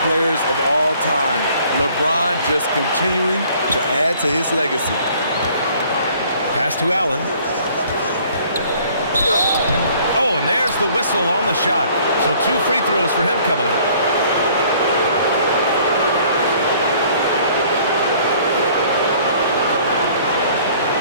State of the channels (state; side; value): inverted; both; correlation -0.57